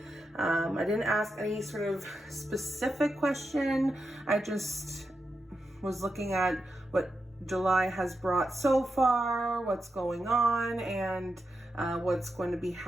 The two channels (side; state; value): both; normal; correlation 0.87